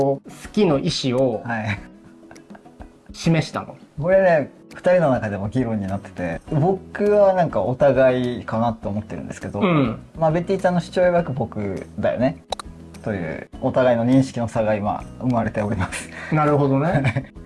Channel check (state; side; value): identical; both; correlation 1.00